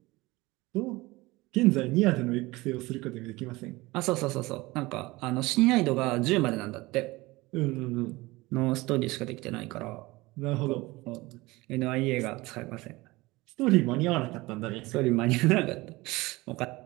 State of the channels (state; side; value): quieter; left; 21.2 dB